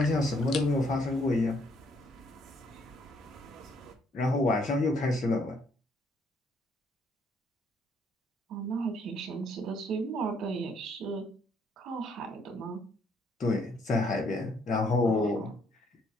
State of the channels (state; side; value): normal; both; correlation 0.68